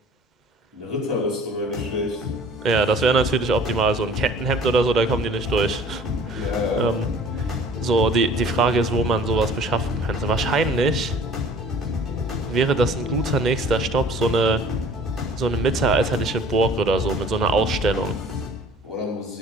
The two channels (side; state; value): both; normal; correlation 0.49